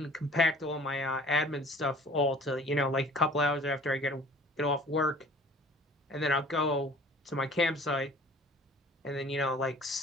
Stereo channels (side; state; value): both; normal; correlation 0.49